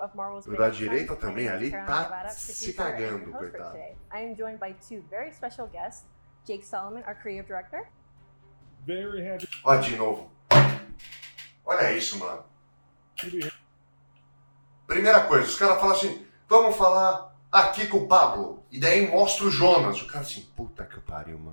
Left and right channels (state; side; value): inverted; both; correlation -1.00